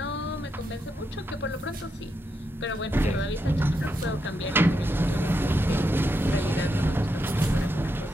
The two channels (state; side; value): normal; both; correlation 0.82